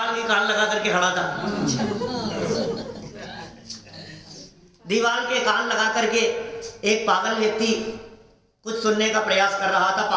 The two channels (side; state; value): both; identical; correlation 1.00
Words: के कान लगा करके खड़ा था। दीवार के कान लगा करके एक पागल व्यक्ति कुछ सुनने का प्रयास कर रहा था